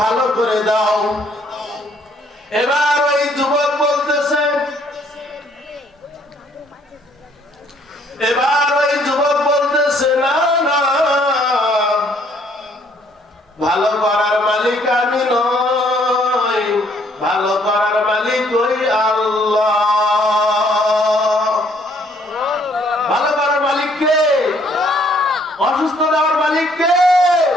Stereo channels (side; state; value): both; normal; correlation 0.64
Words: ভালো করে দাও। এবার ওই যুবক বলতেছে না না, ভালো করার মালিক আমি নই, ভালো করার মালিক ওই আল্লাহ। ভালো করার মালিক কে? অসুস্থ দেওয়ার মালিক কে?